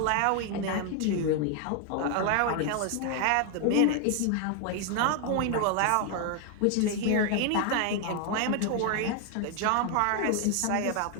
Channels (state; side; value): different; both; correlation 0.00